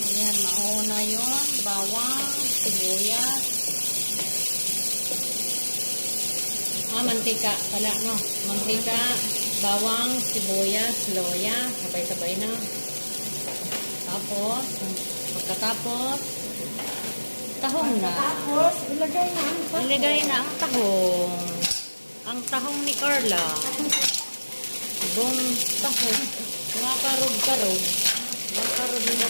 mauna yun. Bawang, sibuyas. Mantika pala, no? Mantika, bawang, sibuyas, loya. Sabay-sabay na. Tapos, pagkatapos, tahong na. Tapos, ilagay na ang tahong. Ilagay na ang tahong. Ang tahong ni Carla. Ibong tahong. Makarog-karog.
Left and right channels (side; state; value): both; inverted; correlation -1.00